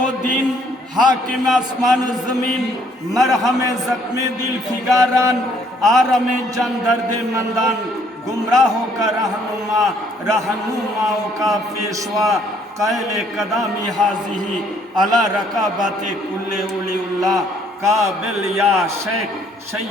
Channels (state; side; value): normal; both; correlation 0.64